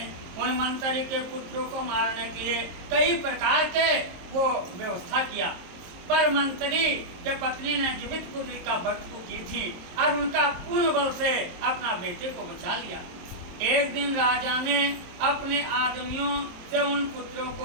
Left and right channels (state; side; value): late; left; 23 ms